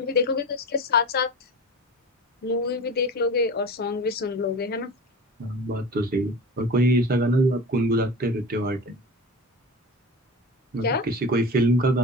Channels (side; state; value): both; normal; correlation 0.32